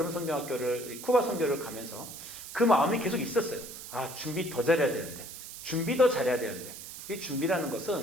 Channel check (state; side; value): noise; right; hiss, 12 dB below the sound